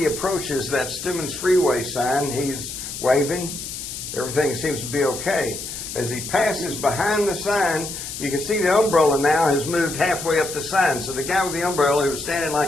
approaches that Stemmons Freeway sign, he's waving. Everything seems to be okay. As he passes behind the sign, you can see the umbrella now has moved halfway up the sign. So the guy with the umbrella who was standing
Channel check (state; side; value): noise; left; hiss, 8 dB below the sound